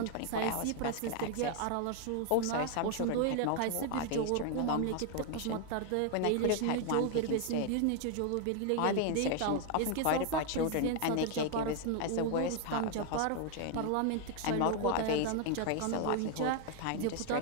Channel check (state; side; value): different; both; correlation 0.01